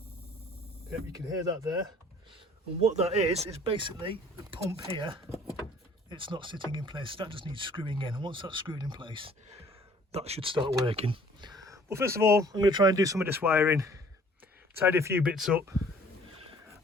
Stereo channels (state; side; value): normal; both; correlation 0.55